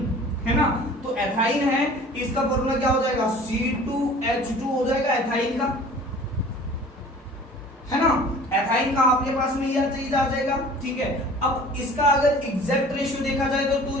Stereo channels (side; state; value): both; normal; correlation 0.46